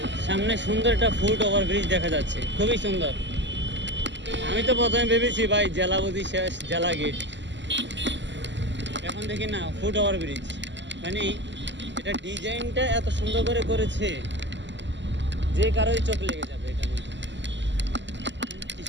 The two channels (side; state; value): left; late; 0.53 ms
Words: সামনে সুন্দর একটা ফুট ওভারব্রিজ দেখা যাচ্ছে, খুবই সুন্দর। আমি তো প্রথমে ভেবেছি ভাই জেলাবদি শেষ, জেলা গেট, এখন দেখি না ফুট ওভারব্রিজ। মানে এটা ডিজাইনটা এত সুন্দর করে করেছে যে কারোই চোখ লেগে যাবে এটার মধ্যে, কি